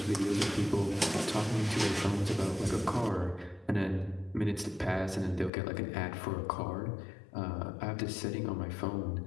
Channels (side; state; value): right; drops out; at 5.5 s